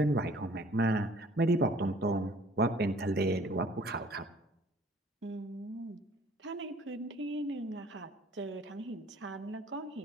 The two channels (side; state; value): both; normal; correlation 0.55